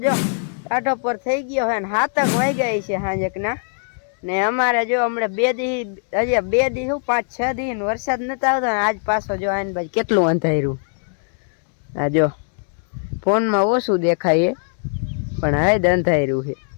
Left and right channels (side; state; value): right; silent; 65 dB below the other